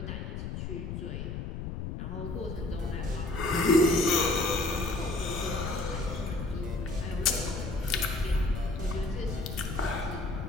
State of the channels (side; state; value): left; noise; rumble, 5 dB below the sound